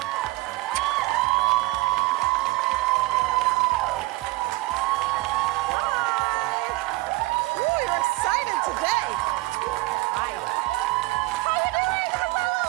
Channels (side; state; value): left; quieter; 20.9 dB